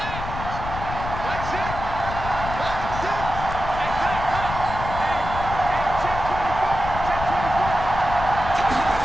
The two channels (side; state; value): left; noise; rumble, 7 dB below the sound